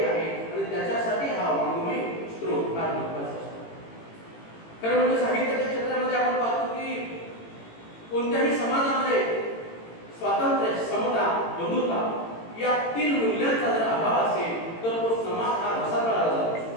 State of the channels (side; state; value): right; late; 18 ms